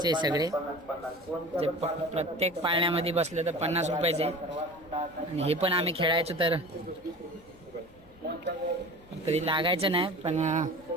सगळे जे प्रत्येक पाळण्यामध्ये बसलं तर 50 रुपयाचे. आणि हे पण आम्ही खेळायचो तर कधी लागायचं नाही, पण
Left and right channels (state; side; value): noise; left; rumble, 25 dB below the sound